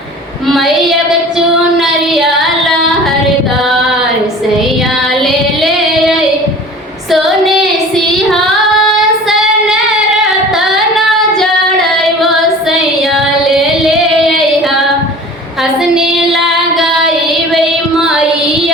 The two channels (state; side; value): normal; both; correlation 0.42